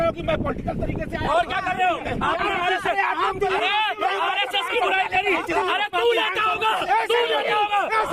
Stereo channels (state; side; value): identical; both; correlation 1.00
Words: हो कि मैं पॉलिटिकल तरीके से और क्या कर रहे हो? आपने आरएसएस की बुराई करी। अरे तू लेता होगा, तू लेता होगा।